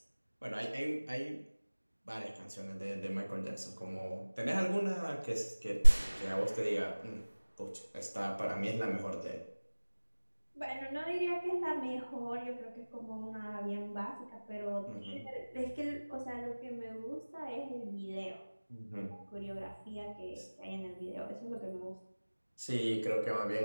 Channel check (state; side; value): inverted; both; correlation -1.00